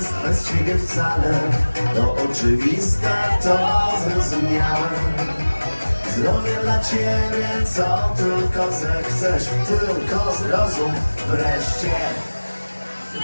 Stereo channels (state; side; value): inverted; both; correlation -1.00